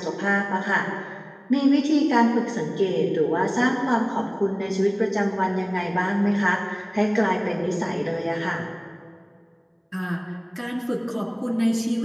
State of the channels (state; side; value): identical; both; correlation 1.00